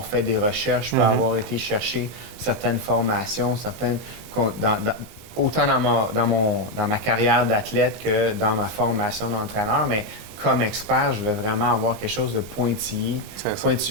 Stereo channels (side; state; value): left; late; 22 ms